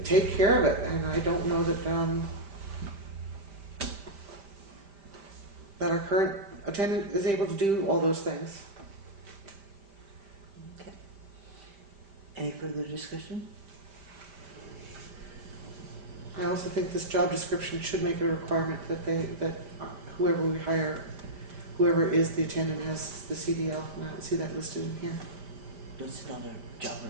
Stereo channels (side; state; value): left; late; 5.1 ms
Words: take care of it. And I don't know that our current attendant is able to do all those things. Okay. Any further discussion? I also think this job description should make a requirement that whoever we hire, whoever is the attendant, has the CDL. And I don't see that listed in here. That's another job.